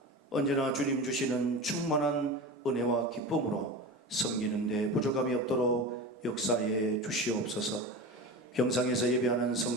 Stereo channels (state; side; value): normal; both; correlation 0.28